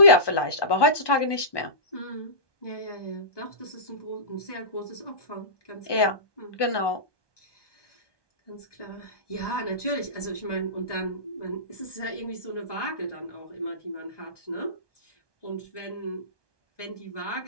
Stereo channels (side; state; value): right; late; 1.2 ms